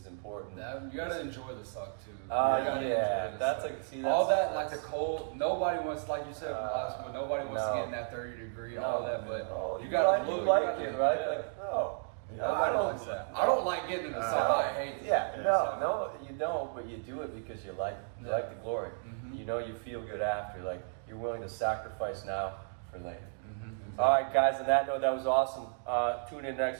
important. You gotta enjoy the suck too. That's like, see, all that, like the cold. Nobody wants, like you said last one. Nobody wants to get in that 30 degree, all that. But you gotta look. You gotta it, right? No. Nobody likes that. I don't like getting in the sun. I hate this. No, you don't, but you do it because you like the glory. You know, you feel good after. Like, you're willing to sacrifice now for later. All right, guys, on that note, that was awesome. Tune in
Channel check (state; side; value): silent; left; digital silence